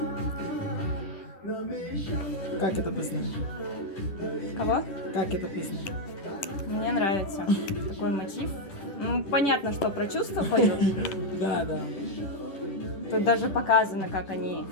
Как эта песня? Кого? Как эта песня? Мне нравится такой мотив. Ну, понятно, что про чувства поют. Да. Тут даже показано, как они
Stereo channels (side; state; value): right; late; 10 ms